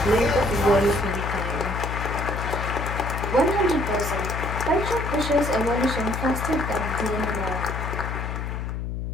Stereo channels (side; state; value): left; noise; hum, 4 dB below the sound